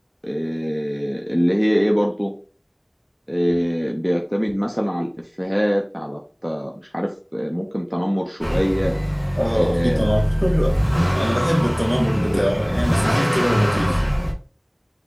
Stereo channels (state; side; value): identical; both; correlation 1.00